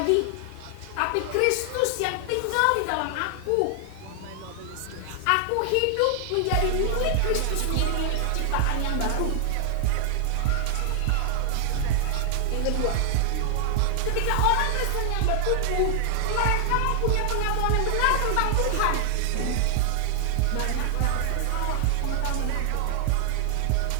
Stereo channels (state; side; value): different; both; correlation 0.00